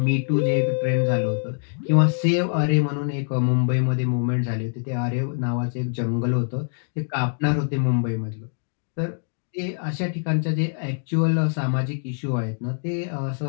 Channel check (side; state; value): right; silent; digital silence